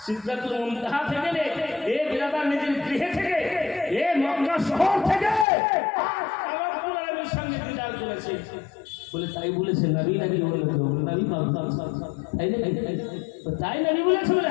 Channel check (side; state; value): right; drops out; at 5.5 s